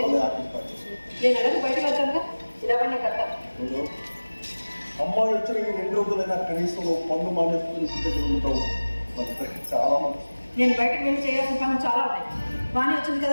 ఆపిస్తాను. నేను ఎలాగో బయటకు వెళ్తానుగా, ఇలావన్నీ కట్టాను. అమ్మాయి వచ్చిన 2 రోజులైనా కనీసం పన్ను మానేసుకుని దగ్గర ఉంటావు. చాలా మంది నేను బయటకు వెళ్ళి చేయాల్సిన పనులు చాలా ఉన్నాయి. వాణి వచ్చింది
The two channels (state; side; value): inverted; both; correlation -1.00